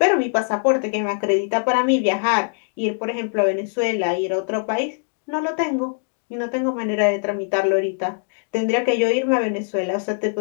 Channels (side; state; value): right; silent; digital silence